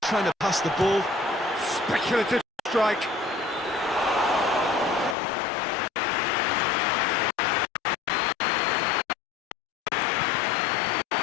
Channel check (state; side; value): drops out; right; at 5.2 s